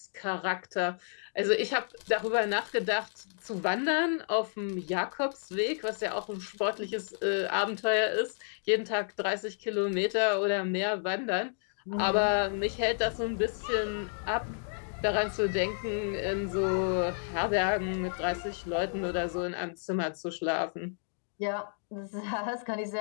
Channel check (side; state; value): right; silent; digital silence